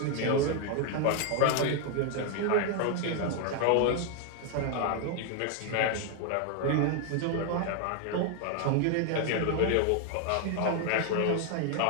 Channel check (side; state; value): both; different; correlation 0.00